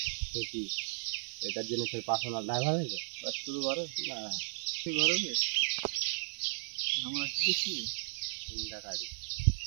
কি এটার জন্য তোর পার্সোনাল ড্রাইভার হয়েছে? শুধু ঘরে না, ঘরে আমরা কি দেখছি, 3টা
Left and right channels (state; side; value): silent; left; 55 dB below the other